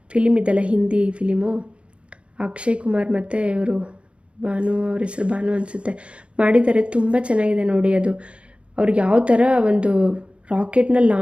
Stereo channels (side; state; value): left; late; 0.059 ms